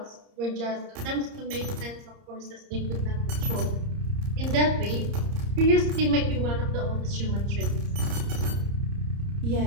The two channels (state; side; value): late; left; 30 ms